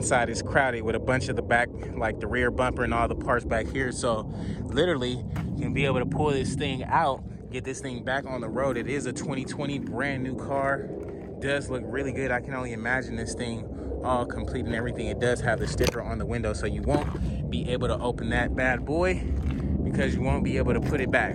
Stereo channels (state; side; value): identical; both; correlation 1.00